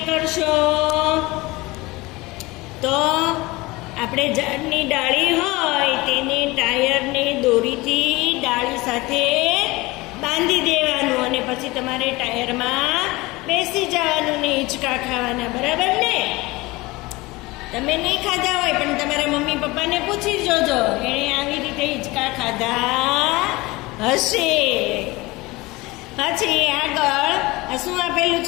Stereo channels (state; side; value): quieter; right; 21.8 dB